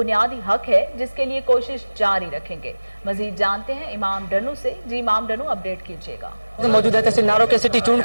حق ہے جس کے لیے کوشش جاری رکھیں گے۔ مزید جانتے ہیں امام ڈنو سے۔ جی امام ڈنو، اپڈیٹ کیجیے گا۔ موجود ہے تحصیل ناروں کے سٹی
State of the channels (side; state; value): both; inverted; correlation -1.00